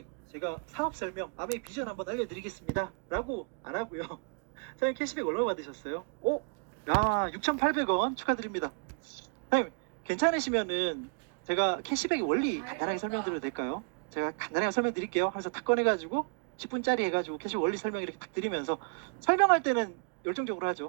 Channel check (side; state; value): left; quieter; 38.6 dB